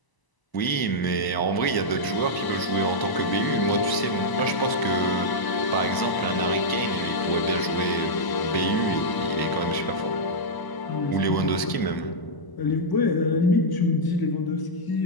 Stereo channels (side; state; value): right; late; 1.0 ms